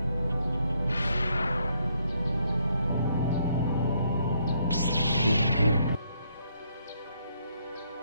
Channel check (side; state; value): both; inverted; correlation -0.73